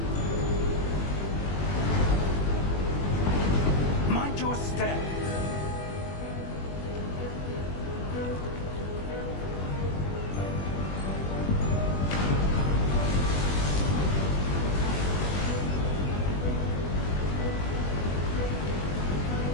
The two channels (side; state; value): right; late; 21 ms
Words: Mind your step.